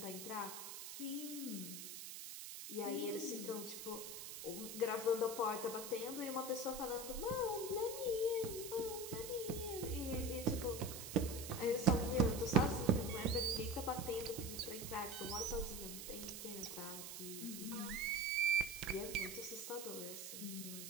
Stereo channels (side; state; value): right; noise; hiss, 8 dB below the sound